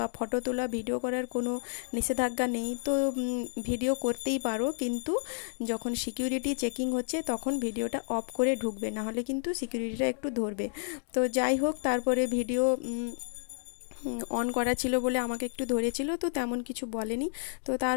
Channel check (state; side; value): silent; right; digital silence